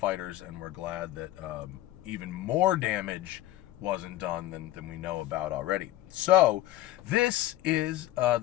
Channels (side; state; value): right; quieter; 15.2 dB